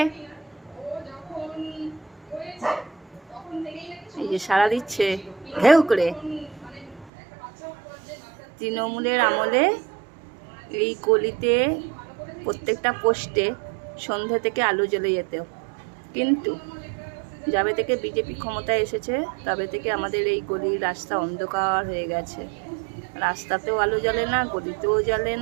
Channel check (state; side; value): drops out; left; at 7.1 s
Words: এই যে সাড়া দিচ্ছে ঘেউ করে। তৃণমূলের আমলে এই গলিতে প্রত্যেকটা পোস্টে সন্ধ্যা থেকে আলো জ্বলে যেত, কিন্তু যাবে থেকে বিজেপি ক্ষমতায় এসেছে তবে থেকে আমাদের এই গলির রাস্তা অন্ধকার হয়ে গেছে। রাস্তাতেও আলো জ্বলে না, গলিতেও জ্বলে